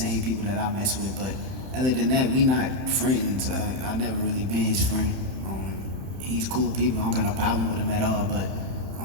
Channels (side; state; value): left; late; 31 ms